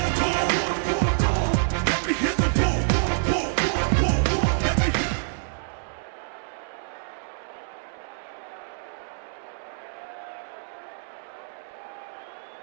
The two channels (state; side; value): silent; left; 60 dB below the other